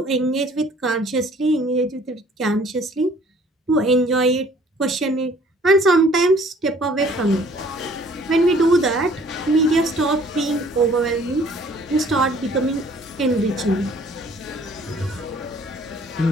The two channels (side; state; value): both; normal; correlation 0.56